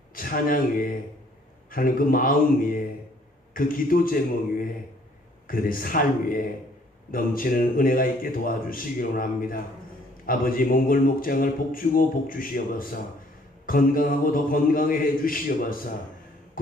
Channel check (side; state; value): both; normal; correlation 0.61